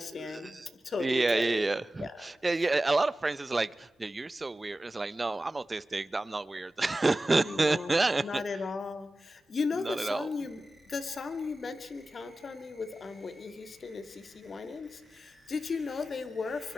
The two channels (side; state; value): both; normal; correlation 0.94